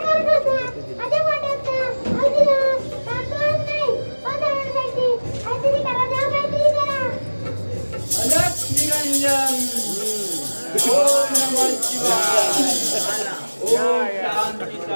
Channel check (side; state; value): both; inverted; correlation -1.00